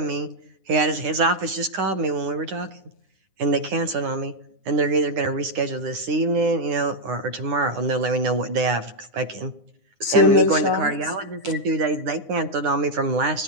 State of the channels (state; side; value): late; left; 9.7 ms